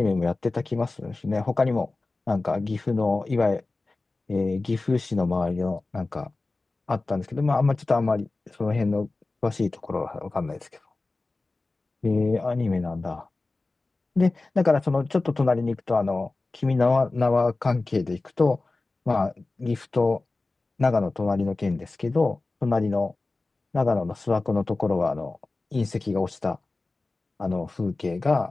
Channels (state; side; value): quieter; right; 3.3 dB